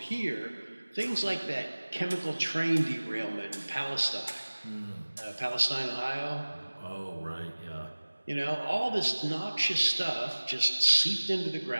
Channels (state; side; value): inverted; both; correlation -1.00